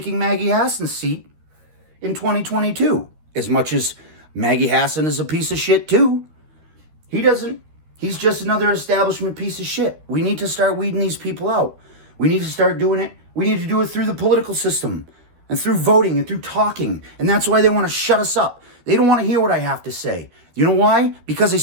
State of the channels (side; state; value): left; late; 13 ms